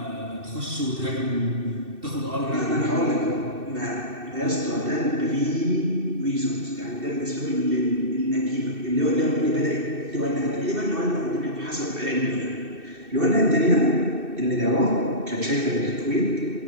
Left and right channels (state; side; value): late; left; 2.6 ms